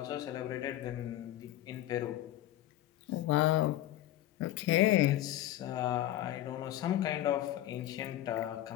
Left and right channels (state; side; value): quieter; right; 13.9 dB